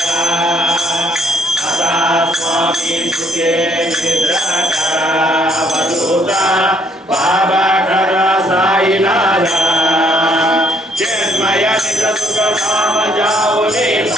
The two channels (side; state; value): both; normal; correlation 0.66